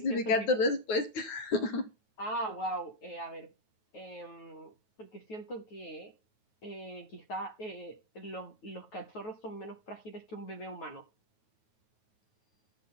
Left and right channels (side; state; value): right; late; 9.3 ms